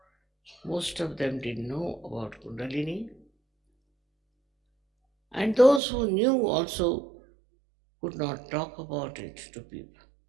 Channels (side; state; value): left; drops out; at 5.8 s